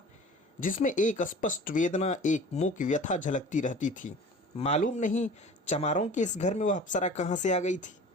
जिसमें एक स्पष्ट वेदना, एक मूक व्यथा झलकती रहती थी। मालूम नहीं चमारों के इस घर में वह अप्सरा कहाँ से आ गई थी।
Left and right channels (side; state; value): both; normal; correlation 0.42